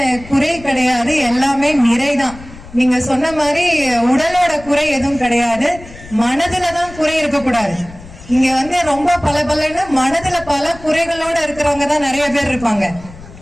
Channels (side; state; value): left; noise; rumble, 18 dB below the sound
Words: குறை கிடையாது, எல்லாமே நிறைதான். நீங்க சொன்ன மாதிரி உடலோட குறை எதுவும் கிடையாது, மனதுலதான் குறை இருக்கக்கூடாது. இங்க ரொம்ப பலன்னு மனதுல பல குறைகளோட இருக்கிறவங்க தான் நிறைய பேர் இருப்பாங்க,